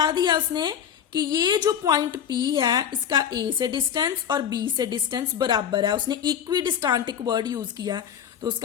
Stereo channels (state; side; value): quieter; right; 8.6 dB